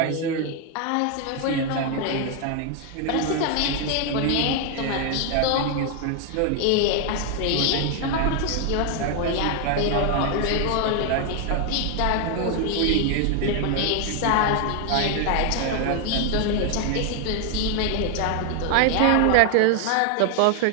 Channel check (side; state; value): both; different; correlation 0.00